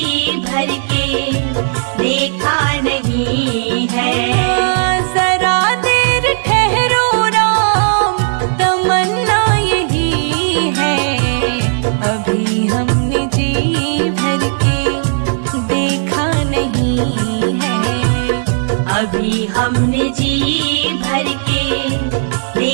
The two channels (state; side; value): silent; left; digital silence